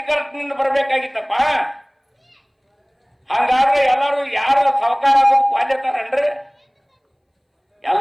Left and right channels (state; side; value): identical; both; correlation 1.00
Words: ಬರ್ಬೇಕಾಗಿತ್ತಪ್ಪ. ಹಂಗಾದ್ರೆ ಎಲ್ಲರೂ ಯಾರು ಸಾವುಕಾರ ಆಗೋದು ಕ್ವಾಲ್ಯತಾರನ್ರಿ?